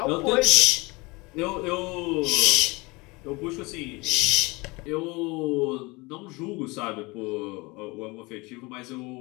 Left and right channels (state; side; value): quieter; right; 24.8 dB